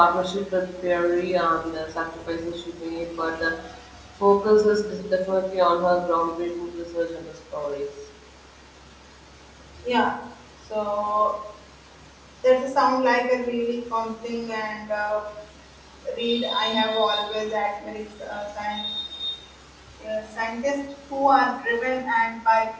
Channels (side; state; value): both; identical; correlation 1.00